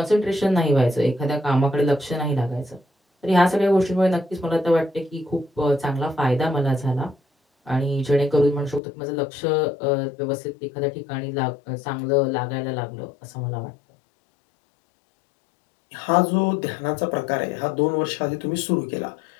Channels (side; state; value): right; drops out; at 8.8 s